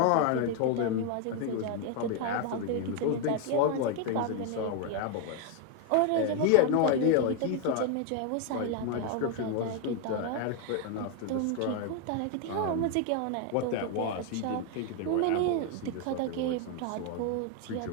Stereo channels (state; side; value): different; both; correlation 0.01